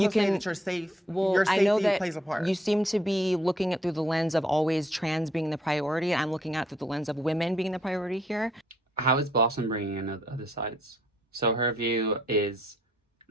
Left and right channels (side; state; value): both; normal; correlation 0.68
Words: say that you're safe? Your safety I know that plays a part. You seem to be looking at through the lens of always trans being the priority. I'm looking at it through the lens of women being the priority here. How is Blossom bringing in other sides? So her view is,